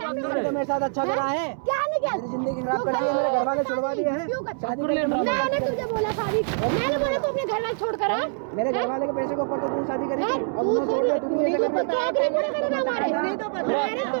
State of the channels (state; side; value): silent; left; 62 dB below the other